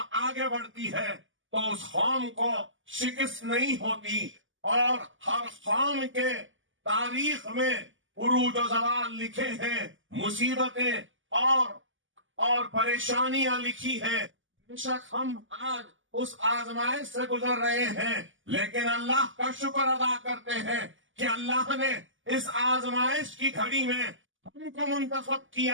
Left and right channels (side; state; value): left; late; 0.57 ms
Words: آگے بڑھتی ہے تو اس قوم کو شکست نہیں ہوتی. اور ہر قوم کے تاریخ میں عروج و زوال لکھے ہیں، مصیبتیں اور پریشانیاں لکھی ہیں. بے شک ہم آج اس آزمائش سے گزر رہے ہیں، لیکن اللہ کا شکر ادا کرتے ہیں کہ اللہ نے اس آزمائش کی گھڑی میں ہم کو منتخب